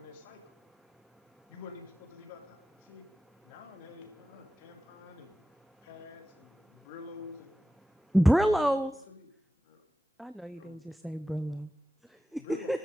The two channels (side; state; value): both; normal; correlation 0.94